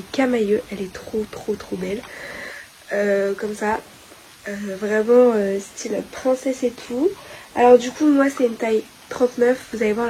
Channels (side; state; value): both; identical; correlation 1.00